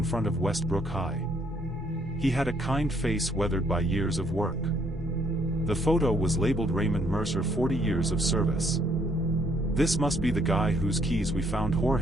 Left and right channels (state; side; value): normal; both; correlation 0.68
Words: front of Westbrook High. He had a kind face weathered by years of work. The photo was labeled Raymond Mercer, 40 years of service. This must be the guy whose keys we found,